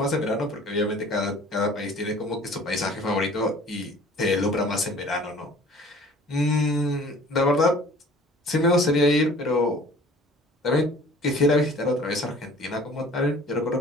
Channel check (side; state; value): both; normal; correlation 0.49